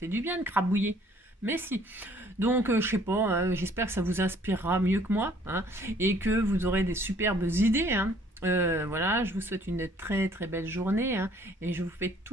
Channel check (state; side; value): normal; both; correlation 0.59